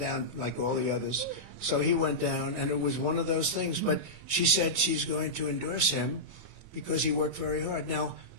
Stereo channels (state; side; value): late; left; 28 ms